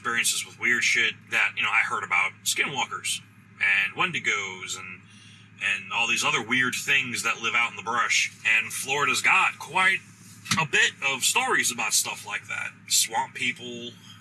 with weird shit that, I heard about skinwalkers and wendigos and all these other weird things that live out in the brush. And Florida's got quite a bit of stories about stuff like that. Swamp people,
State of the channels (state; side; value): identical; both; correlation 1.00